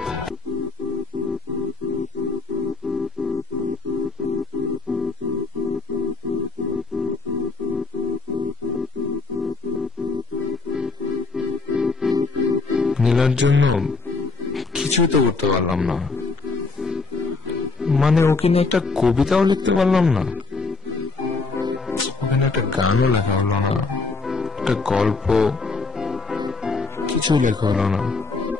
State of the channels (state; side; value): quieter; right; 3.7 dB